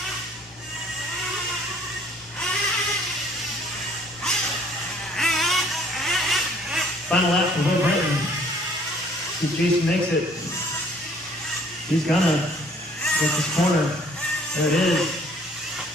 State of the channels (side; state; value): both; normal; correlation 0.58